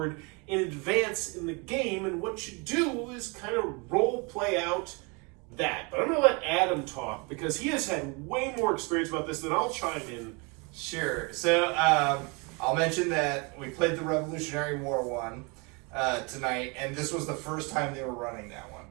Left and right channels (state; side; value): quieter; left; 30.5 dB